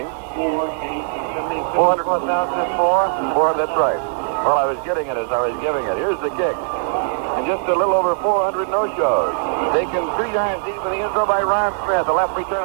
400,004? That's right. Well, I was getting it as I was giving it. Here's the kick. And just a little over 400 no-shows. Taken 3 yards deep in the end zone by Ron Smith. The left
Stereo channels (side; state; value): left; silent; digital silence